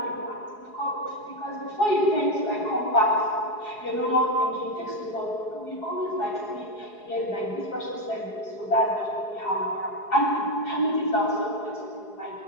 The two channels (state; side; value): late; right; 4.8 ms